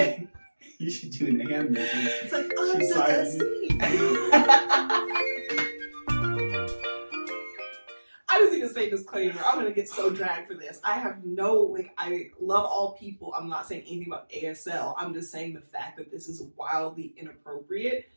you should do an hand movement. It's like, She's I just need to say disclaimer. I'm going to get so dragged for this. I have I love all people. I'm not saying anything about ASL. I'm just saying the fact that this is wildly inappropriate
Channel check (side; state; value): both; inverted; correlation -1.00